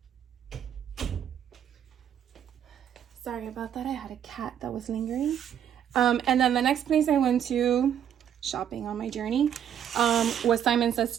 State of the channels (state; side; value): quieter; left; 9.3 dB